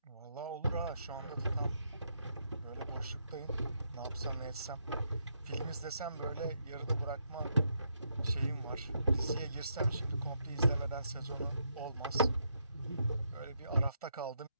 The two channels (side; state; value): both; inverted; correlation -0.78